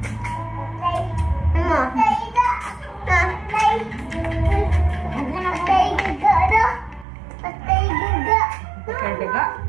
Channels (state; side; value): drops out; left; at 7.1 s